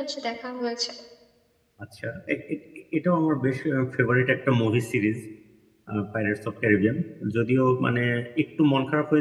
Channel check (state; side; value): identical; both; correlation 1.00